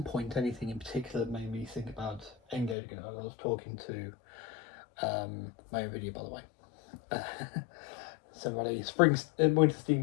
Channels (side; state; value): right; drops out; at 2.8 s